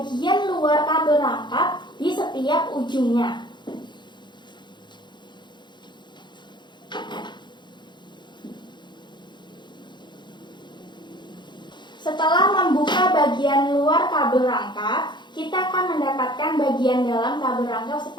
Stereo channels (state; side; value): late; right; 0.22 ms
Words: luar kabel rangkap di setiap ujungnya. Setelah membuka bagian luar kabel rangkap, kita akan mendapatkan bagian dalam kabel rangkap